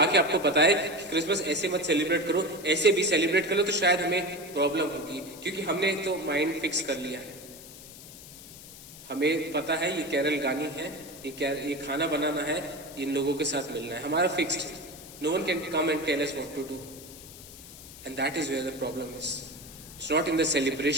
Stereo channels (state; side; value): noise; left; hiss, 16 dB below the sound